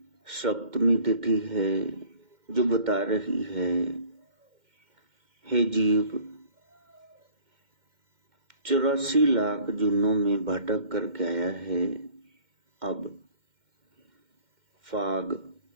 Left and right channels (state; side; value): late; left; 2.1 ms